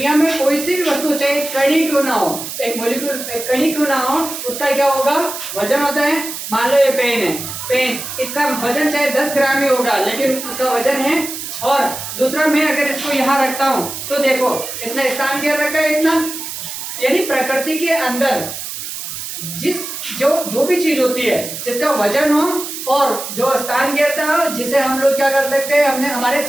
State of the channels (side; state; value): right; noise; hiss, 8 dB below the sound